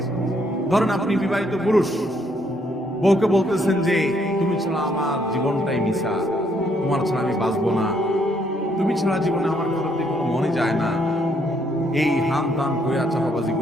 ধরেন আপনি বিবাহিত পুরুষ, বউকে বলতেছেন যে তুমি ছাড়া আমার জীবনটাই মিশা, তোমার ছাড়া আমি বাঁচবো না, তুমি ছাড়া জীবনে আমার করতে কোনো মনে যায় না, এই হান তান কইয়া চাপাবাজি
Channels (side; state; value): both; normal; correlation 0.71